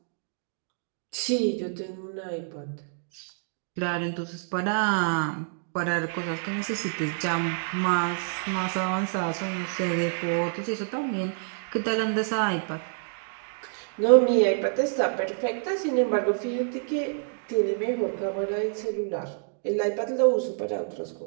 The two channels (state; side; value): silent; left; digital silence